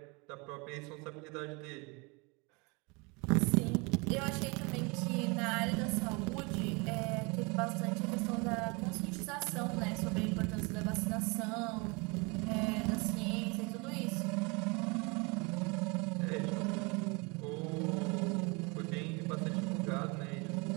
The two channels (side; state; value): left; quieter; 29.0 dB